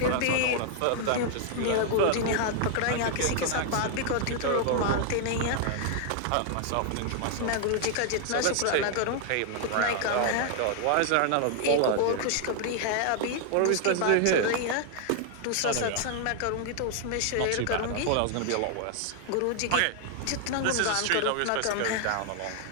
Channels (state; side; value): different; both; correlation 0.00